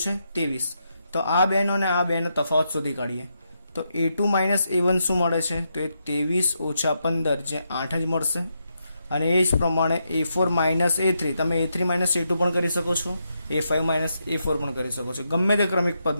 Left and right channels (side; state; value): both; inverted; correlation -0.82